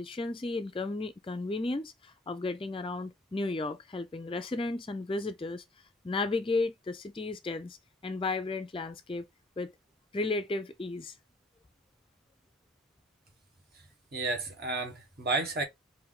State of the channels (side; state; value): both; normal; correlation 0.53